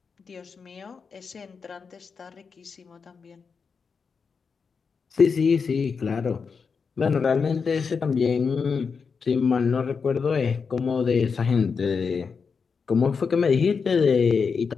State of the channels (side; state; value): right; quieter; 5.5 dB